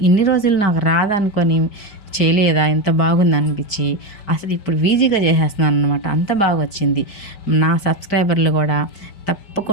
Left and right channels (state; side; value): late; right; 4.9 ms